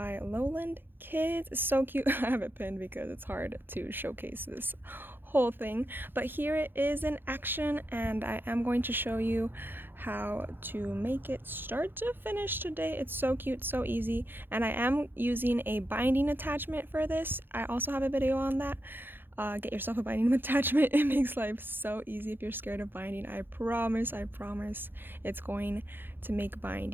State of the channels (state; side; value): late; left; 0.099 ms